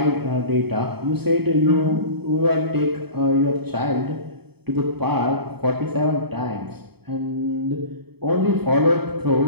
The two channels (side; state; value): left; late; 0.97 ms